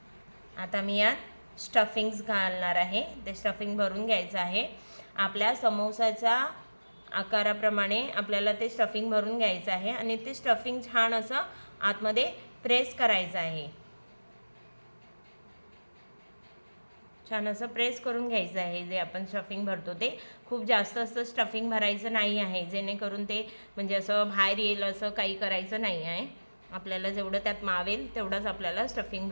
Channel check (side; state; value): both; inverted; correlation -1.00